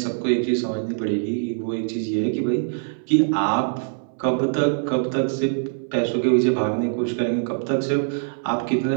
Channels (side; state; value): left; silent; 61 dB below the other